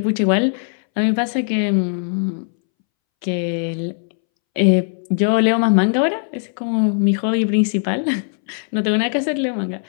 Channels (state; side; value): silent; right; 65 dB below the other